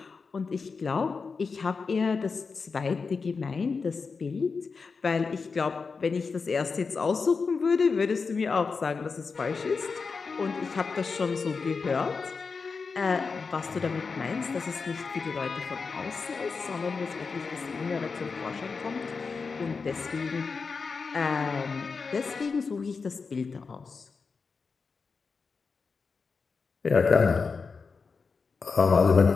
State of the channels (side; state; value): right; quieter; 4.9 dB